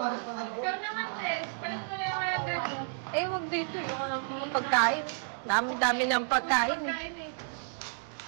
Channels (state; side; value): silent; left; digital silence